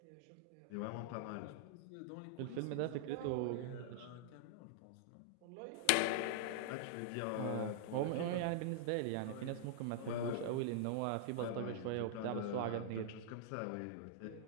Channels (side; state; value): both; different; correlation -0.01